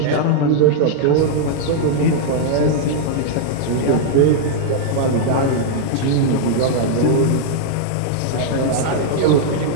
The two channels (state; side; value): different; both; correlation -0.01